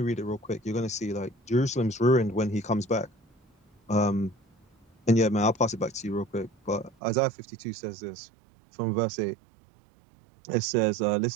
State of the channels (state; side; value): drops out; left; at 7.0 s